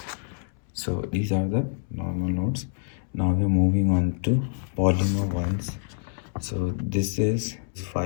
So these are the normal notes. Now we're moving on to polymer ones. So this is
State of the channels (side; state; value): right; silent; 61 dB below the other